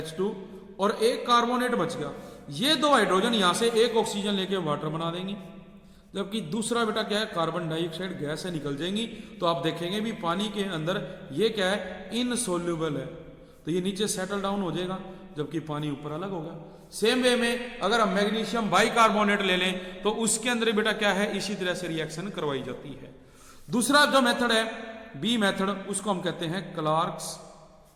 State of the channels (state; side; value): identical; both; correlation 1.00